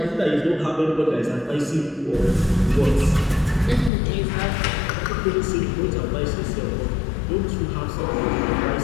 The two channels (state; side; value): drops out; right; at 3.9 s